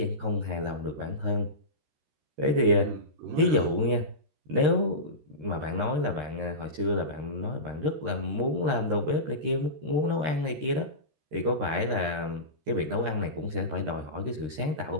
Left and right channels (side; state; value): left; late; 13 ms